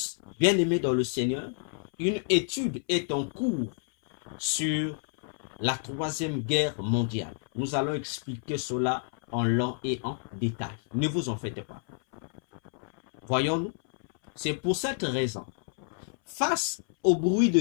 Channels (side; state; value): right; silent; 58 dB below the other